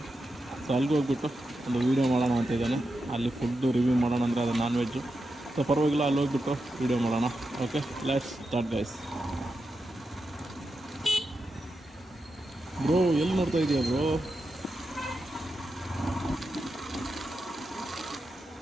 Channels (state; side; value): normal; both; correlation 0.88